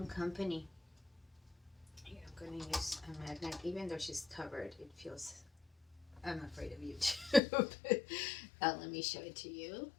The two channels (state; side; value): drops out; right; at 7.4 s